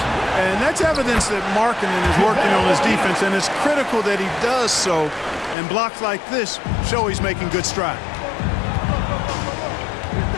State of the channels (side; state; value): right; drops out; at 5.6 s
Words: And that's evidence that Markkanen is working on his defense, and it's critical that he does so. And blocks like this show he's making good stride.